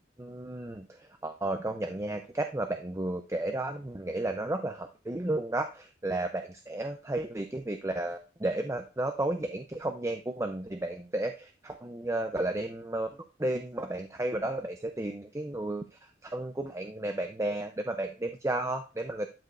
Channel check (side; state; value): both; normal; correlation 0.72